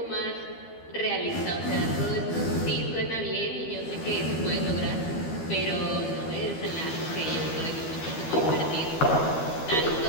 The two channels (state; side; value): late; right; 12 ms